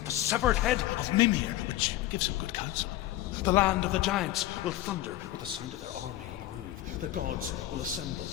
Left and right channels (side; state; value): right; quieter; 14.9 dB